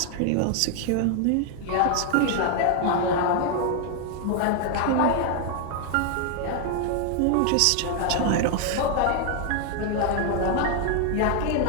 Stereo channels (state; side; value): different; both; correlation 0.00